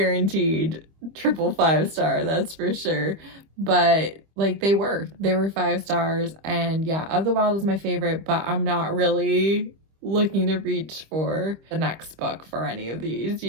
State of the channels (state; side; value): late; left; 25 ms